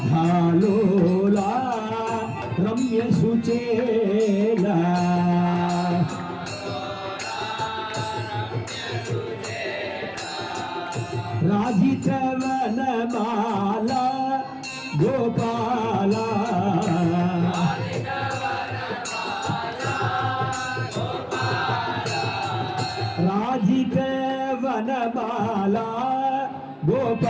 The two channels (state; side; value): identical; both; correlation 1.00